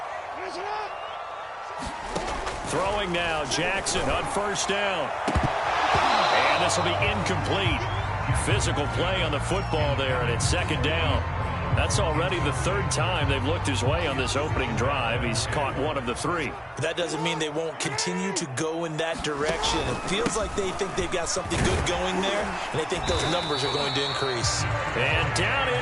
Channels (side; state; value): both; identical; correlation 1.00